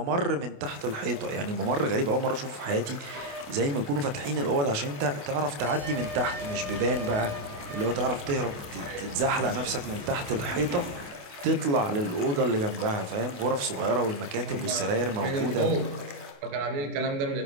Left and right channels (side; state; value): left; late; 28 ms